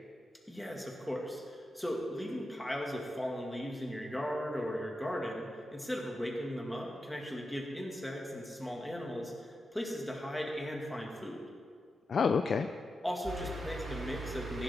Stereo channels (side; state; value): both; normal; correlation 0.89